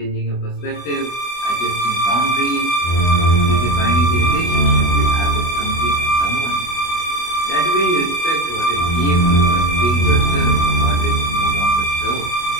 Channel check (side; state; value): right; late; 24 ms